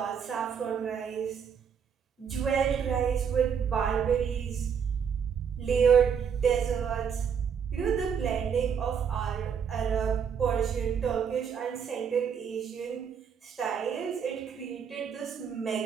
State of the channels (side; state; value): left; quieter; 7.2 dB